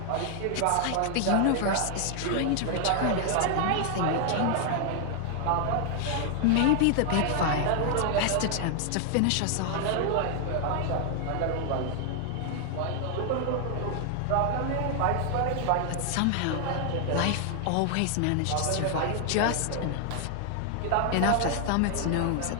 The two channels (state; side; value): different; both; correlation 0.00